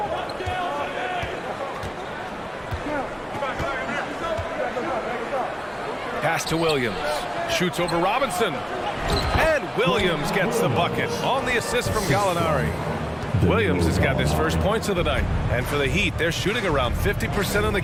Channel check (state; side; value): identical; both; correlation 1.00